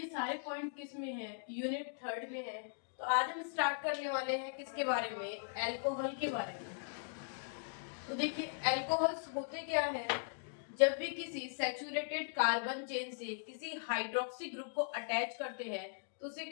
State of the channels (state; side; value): silent; right; digital silence